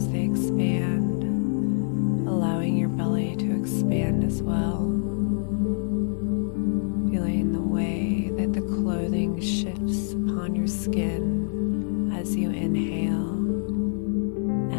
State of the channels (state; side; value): silent; right; 59 dB below the other